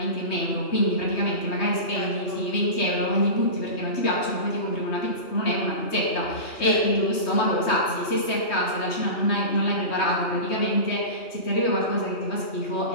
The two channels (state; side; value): late; right; 3.2 ms